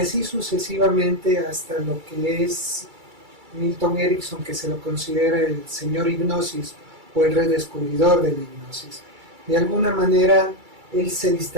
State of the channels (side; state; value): left; late; 2.3 ms